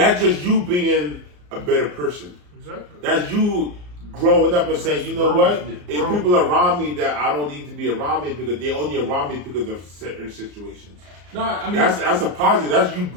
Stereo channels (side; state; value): left; late; 34 ms